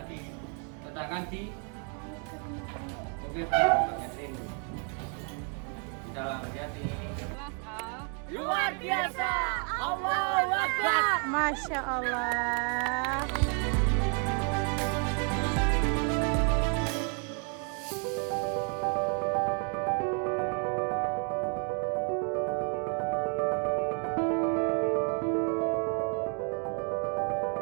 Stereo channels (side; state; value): left; quieter; 40.0 dB